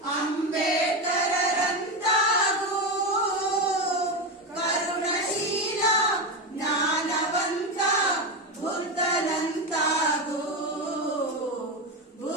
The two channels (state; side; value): normal; both; correlation 0.15